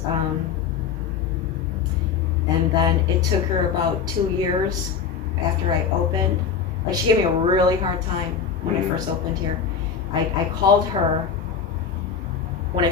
and then it took her about 2 years after I opened. Like, she gave me a really hard time when I first opened here. I called her when I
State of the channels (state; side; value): quieter; right; 6.7 dB